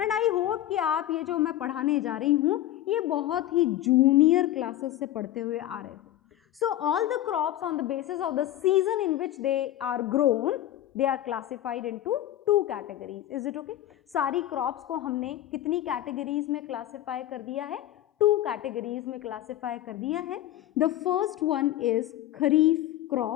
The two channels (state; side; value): quieter; right; 13.3 dB